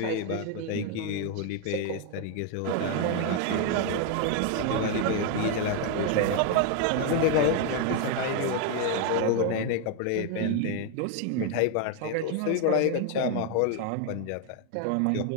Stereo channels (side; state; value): both; different; correlation 0.00